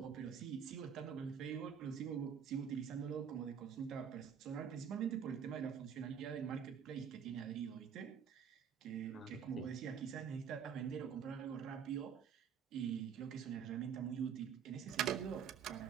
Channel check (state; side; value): quieter; left; 7.7 dB